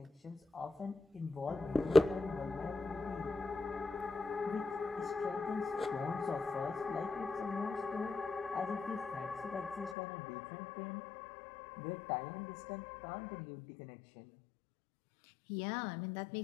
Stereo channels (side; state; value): right; drops out; at 10.0 s